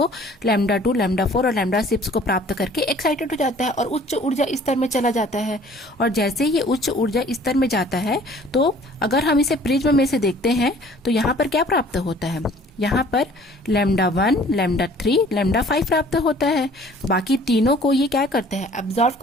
लैम्डा 2, लैम्डा 4 और लैम्डा 6 को प्राप्त करके एक्साइटेड हो जाता है और उच्च ऊर्जा स्तर में चला जाता है। और जैसे ये उच्च ऊर्जा स्तर में जाता है, तो अगर हम इसे प्रिज्म में से देखते हैं तो यहाँ पर क्या प्राप्त होता है, यहाँ पर लैम्डा 1, लैम्डा 3, लैम्डा 5 प्राप्त होता है। बाकी तीनों को ये क्या करता है, एब्जॉर्ब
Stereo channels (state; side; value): normal; both; correlation 0.53